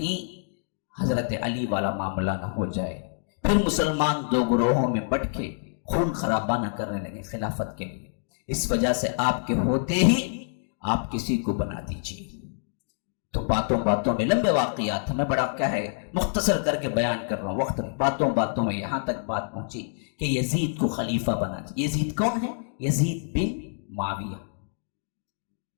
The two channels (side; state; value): right; silent; digital silence